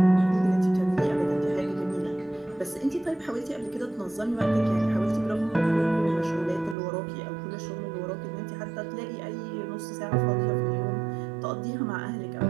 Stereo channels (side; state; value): left; drops out; at 6.8 s